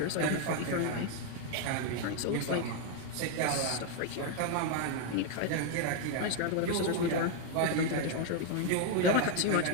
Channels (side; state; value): both; different; correlation 0.01